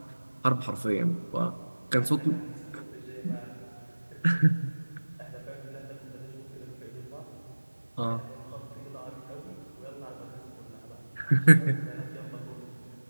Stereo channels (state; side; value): inverted; both; correlation -1.00